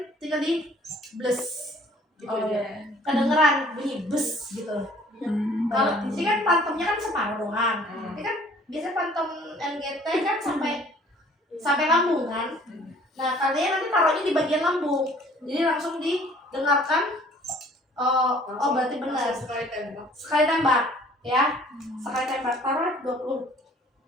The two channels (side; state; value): both; normal; correlation 0.55